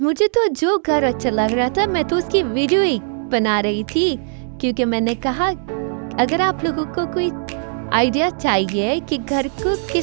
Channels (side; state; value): left; silent; 66 dB below the other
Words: मुझे तो जो घर अच्छा लग रहा था मैं तो उसकी वीडियो ही बना रही थी, क्योंकि मैंने कहा अगर आप लोगों को कोई आइडिया चाहिए कि घर को